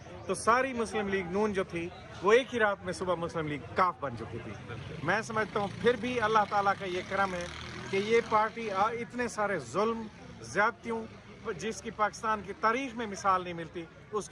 तो सारी मुस्लिम लीग नून जो थी वो एक ही रात में सुबह मुस्लिम लीग काफ बन चुकी थी। मैं समझता हूँ फिर भी अल्लाह ताला का ये करम है कि ये पार्टी इतने सारे जुल्म, ज़्यादतियों, जिसकी पाकिस्तान की तारीख में मिसाल नहीं मिलती,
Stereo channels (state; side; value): identical; both; correlation 1.00